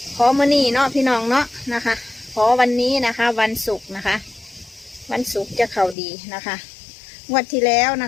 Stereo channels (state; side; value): drops out; right; at 6.0 s